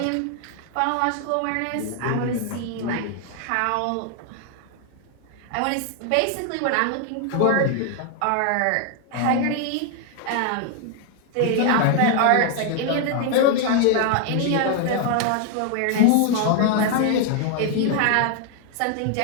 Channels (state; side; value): different; both; correlation 0.00